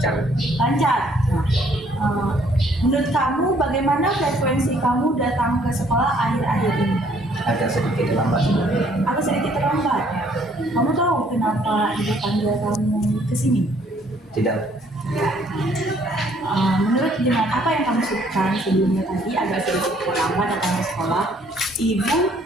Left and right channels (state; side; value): normal; both; correlation 0.63